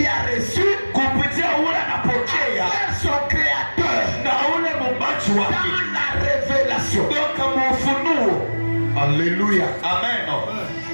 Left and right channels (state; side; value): inverted; both; correlation -1.00